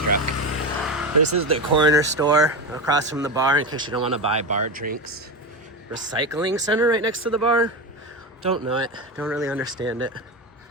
This is the corner store across from the bar in case you don't want to buy bar drinks. Recycling center right next to the bar? Don't know it. Don't really understand it.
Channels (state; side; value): normal; both; correlation 0.18